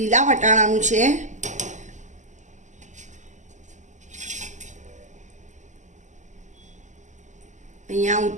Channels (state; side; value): late; left; 0.35 ms